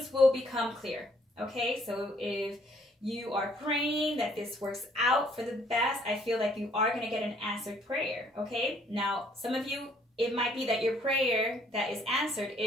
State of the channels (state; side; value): normal; both; correlation 0.64